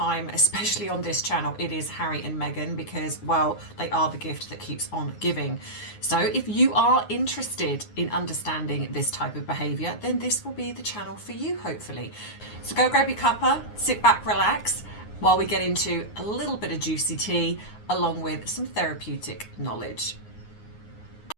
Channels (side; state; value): right; late; 9.6 ms